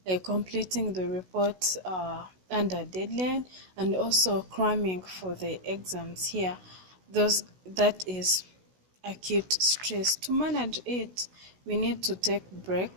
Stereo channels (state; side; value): late; left; 16 ms